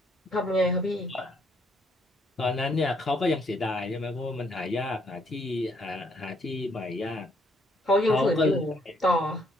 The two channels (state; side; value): normal; both; correlation 0.69